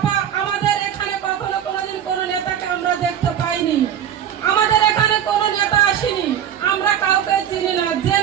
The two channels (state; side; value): quieter; left; 9.6 dB